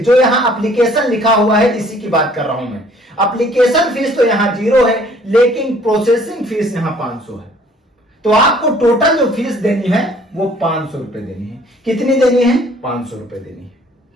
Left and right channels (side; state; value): both; normal; correlation 0.57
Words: जो यहां एप्लीकेशन लिखा हुआ है इसी की बात कर रहा हूं मैं। एप्लीकेशन फीस तो यहां 0 है, लेकिन प्रोसेसिंग फीस यहां 500 है। तो आपको टोटल जो फीस देनी है वो 500 रुपए देनी है। कितनी देनी है, 500 रुपए देनी है।